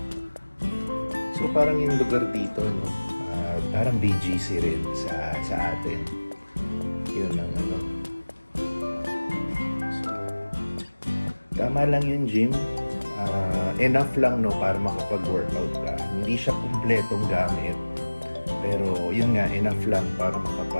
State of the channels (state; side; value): inverted; both; correlation -1.00